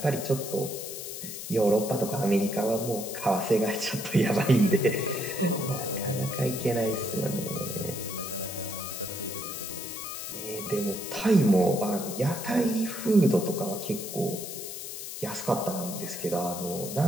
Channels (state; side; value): noise; left; hiss, 8 dB below the sound